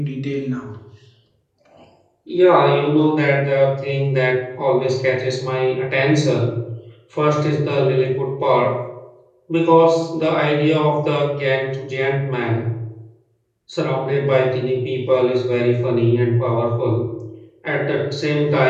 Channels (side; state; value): both; identical; correlation 1.00